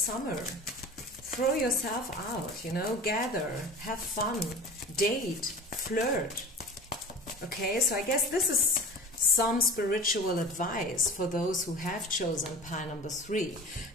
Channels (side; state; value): both; normal; correlation 0.37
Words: Throw yourself out, you know, gather, have fun, date, flirt. Okay, so I guess this is some spiritual advice for those who have chosen pile number 3.